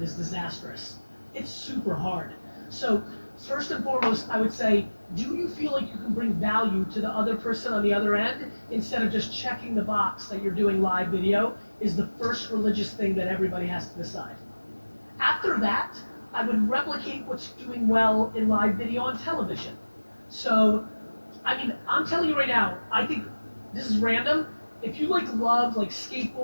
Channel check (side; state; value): both; inverted; correlation -1.00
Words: is disastrous. It's super hard. So first and foremost, I would say, do you feel like you can bring value to the other person on the other end instead of just checking the box that you're doing live video is the first religious thing that everybody has to decide. After that, I would replicate what's doing well in live video on television. So, I'm telling you right now, I think this is random. If you love